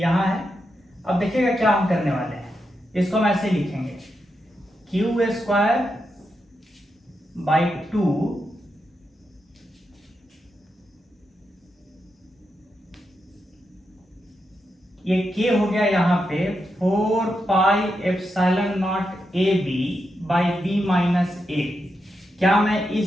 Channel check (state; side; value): normal; both; correlation 0.85